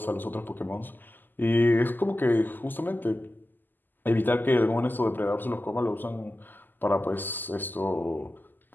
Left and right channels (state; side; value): late; right; 0.089 ms